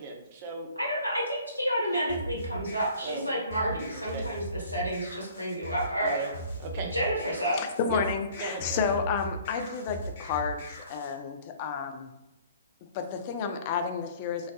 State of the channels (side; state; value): both; inverted; correlation -0.52